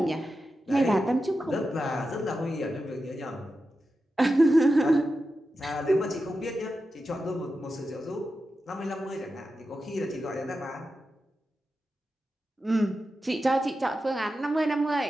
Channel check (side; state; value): both; normal; correlation 0.90